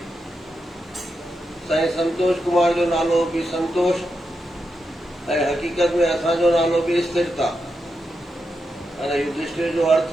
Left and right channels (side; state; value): both; normal; correlation 0.86